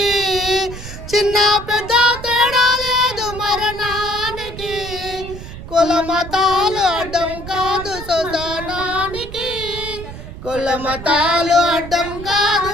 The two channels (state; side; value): noise; right; rumble, 12 dB below the sound